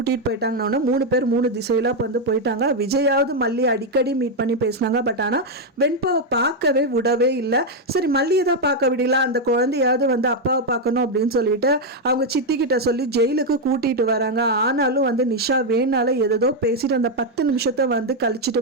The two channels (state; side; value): normal; both; correlation 0.02